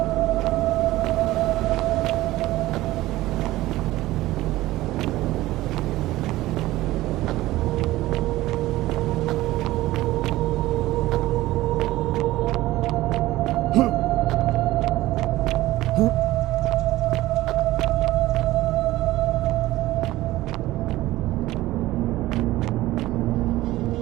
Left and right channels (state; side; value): quieter; left; 17.0 dB